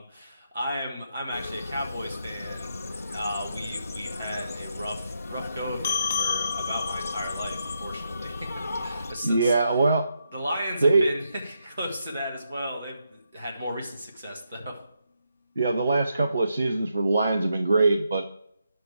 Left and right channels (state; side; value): inverted; both; correlation -0.82